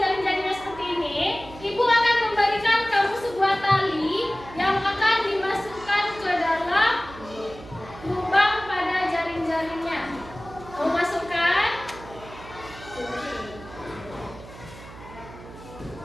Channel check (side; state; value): right; noise; hum, 17 dB below the sound